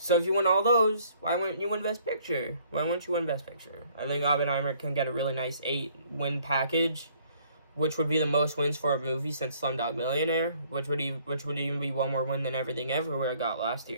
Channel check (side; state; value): both; inverted; correlation -0.61